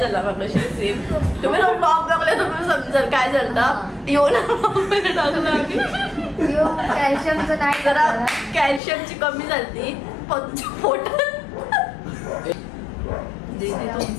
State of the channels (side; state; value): right; drops out; at 8.8 s